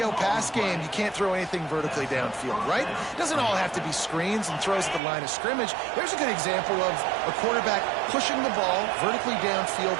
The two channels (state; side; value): drops out; left; at 5.0 s